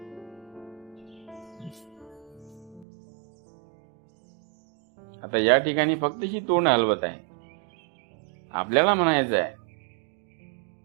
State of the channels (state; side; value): drops out; left; at 2.9 s